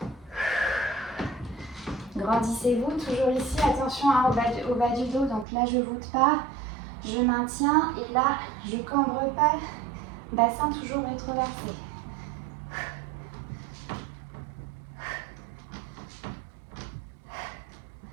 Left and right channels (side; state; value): left; drops out; at 5.5 s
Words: Grandissez-vous, toujours ici, attention hein, au bas du dos. Donc là, je ne voûte pas, je maintiens et là, je ne cambre pas. Bassin toujours rétroversé.